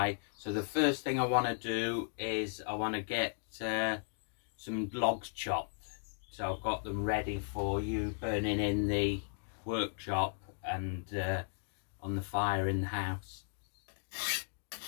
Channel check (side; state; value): right; silent; digital silence